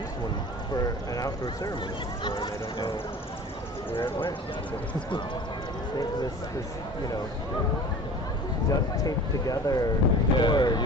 one for an outdoor ceremony before, and I don't know where it went. this, you know, duct taped together cord. You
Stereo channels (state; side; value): normal; both; correlation 0.41